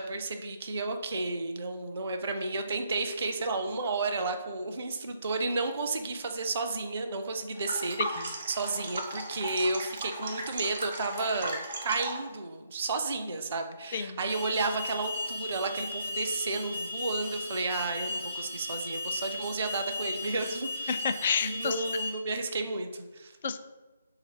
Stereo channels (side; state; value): both; inverted; correlation -0.71